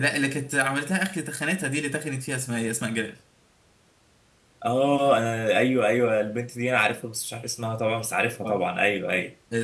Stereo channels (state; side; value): identical; both; correlation 1.00